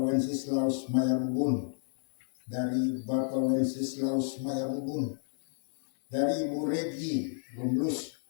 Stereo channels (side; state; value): right; silent; 58 dB below the other